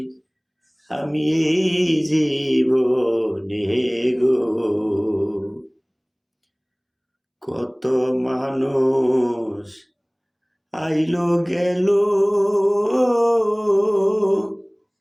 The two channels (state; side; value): identical; both; correlation 1.00